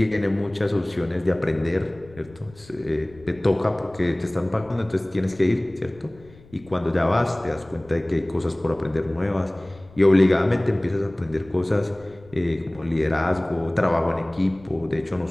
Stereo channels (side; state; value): left; noise; rumble, 23 dB below the sound